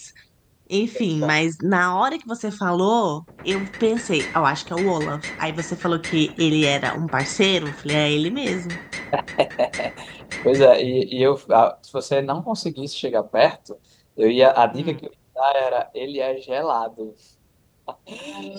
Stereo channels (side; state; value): both; identical; correlation 1.00